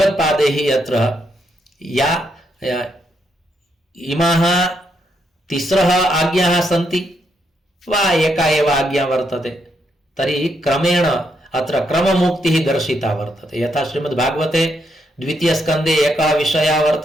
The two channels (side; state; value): both; normal; correlation 0.78